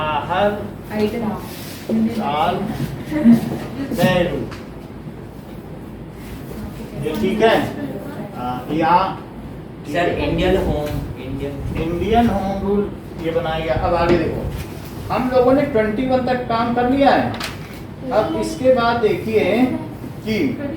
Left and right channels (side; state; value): both; identical; correlation 1.00